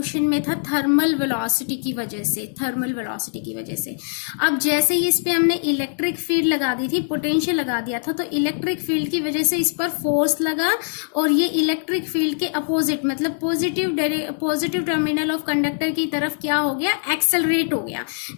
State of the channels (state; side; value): silent; right; 64 dB below the other